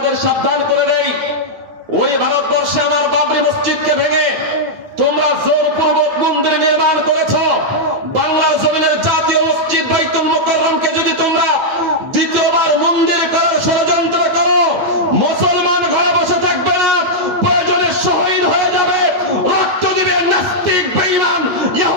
সাবধান করে দেই, ওই ভারতবর্ষে আমার বাবরি মসজিদকে ভেঙে তোমরা জোরপূর্বক মন্দির নির্মাণ করেছ। বাংলার জমিনের জাতীয় মসজিদ বাইতুল মোকাররমকে যদি তোমরা দ্বিতীয়বার মন্দির করার ষড়যন্ত্র করো, মুসলমান ঘরে বসে থাকবে না, প্রয়োজনে শহীদ হয়ে যাবে, রক্ত দিবে, নাস্তিক বেঈমান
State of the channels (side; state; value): left; late; 9.1 ms